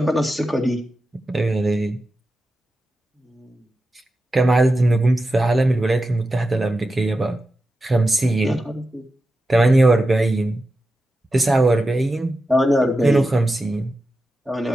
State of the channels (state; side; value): normal; both; correlation 0.91